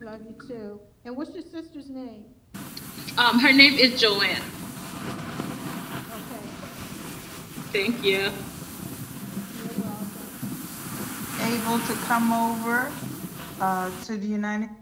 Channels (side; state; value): both; identical; correlation 1.00